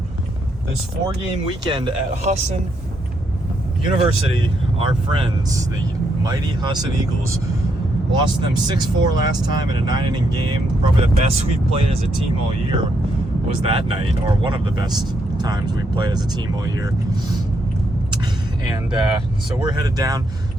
this 4-game weekend at Husson University. Our friends, the mighty Husson Eagles, lost them 6-4 last time in a 9-inning game. Probably the best we've played as a team all year was that night, or one of the best times we've played as a team all year. And so we're headed down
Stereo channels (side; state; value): both; normal; correlation 0.77